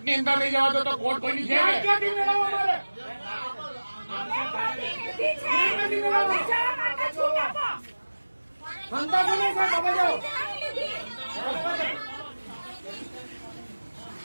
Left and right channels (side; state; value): both; inverted; correlation -1.00